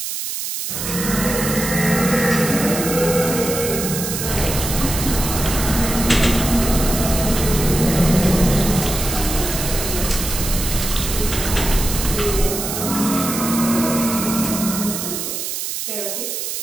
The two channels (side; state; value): right; noise; hiss, 4 dB below the sound